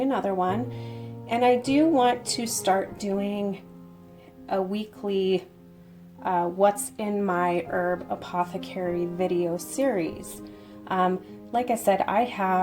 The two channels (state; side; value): identical; both; correlation 1.00